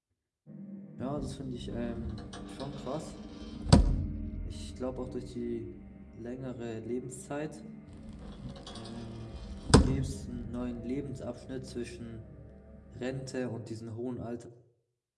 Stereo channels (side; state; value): both; identical; correlation 1.00